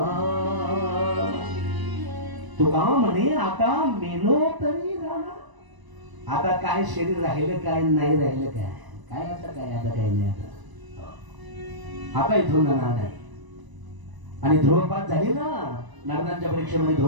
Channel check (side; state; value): left; late; 1.0 ms